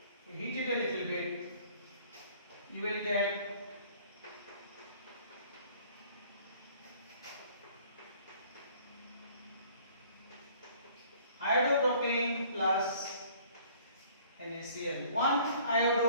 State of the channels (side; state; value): both; inverted; correlation -0.55